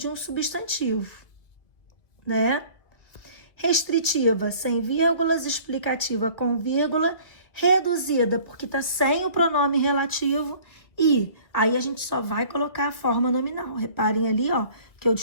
um substantivo, né? Restritiva, sem vírgulas, explicativa com vírgula, reduzida, porque está sem o pronome relativo, e aí a gente só vai colocar a forma nominal. Reparem ali, que eu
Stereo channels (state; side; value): late; right; 1.7 ms